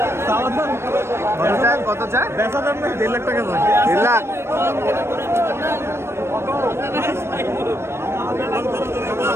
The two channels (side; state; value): left; late; 0.12 ms